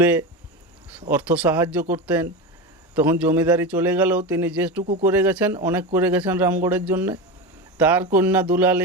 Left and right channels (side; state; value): both; normal; correlation 0.21